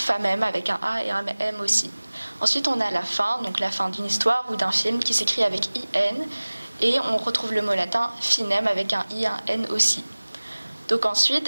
avec un A et un M aussi. Ensuite, on a la fin, donc la fin d'une histoire ou d'un film qui s'écrit avec IN. Et on retrouve le mot latin finem avec un I et un N aussi. Donc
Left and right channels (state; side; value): inverted; both; correlation -1.00